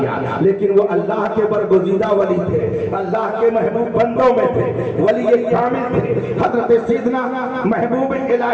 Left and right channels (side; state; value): both; identical; correlation 1.00